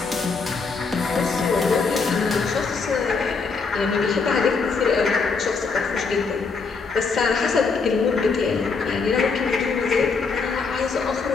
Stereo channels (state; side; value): quieter; right; 4.7 dB